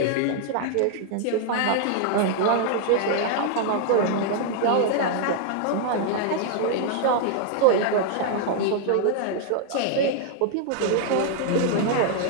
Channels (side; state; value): both; different; correlation 0.00